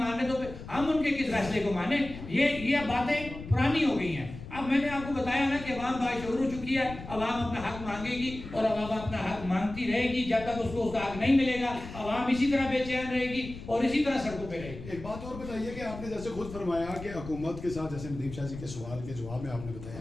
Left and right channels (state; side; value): noise; left; rumble, 12 dB below the sound